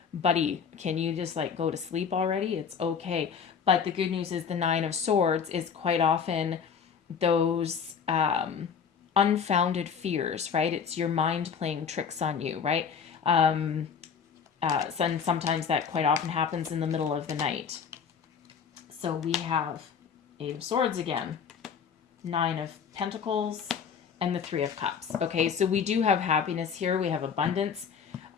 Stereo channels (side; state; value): right; quieter; 6.8 dB